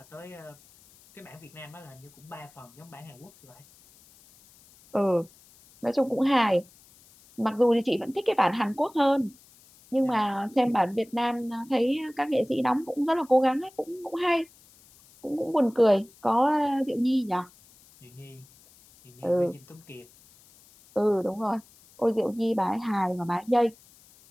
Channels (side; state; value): left; noise; hiss, 27 dB below the sound